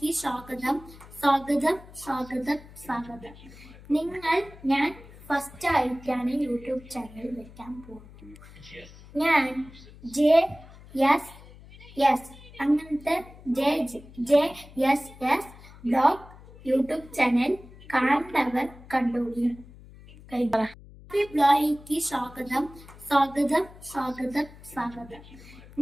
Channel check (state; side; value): noise; left; hum, 20 dB below the sound